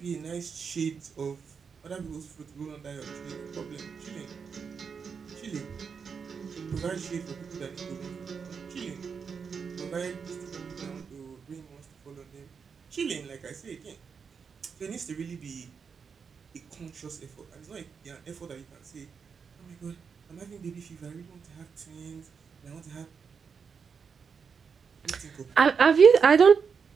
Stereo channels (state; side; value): quieter; left; 6.1 dB